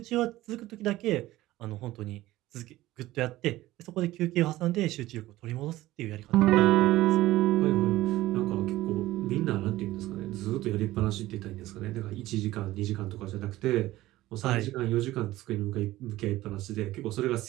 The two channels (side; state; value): left; quieter; 16.6 dB